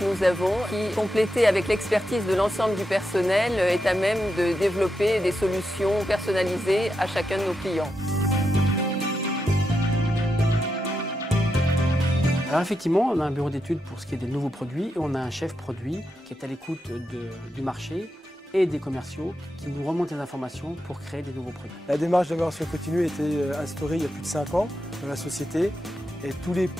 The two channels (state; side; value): normal; both; correlation 0.86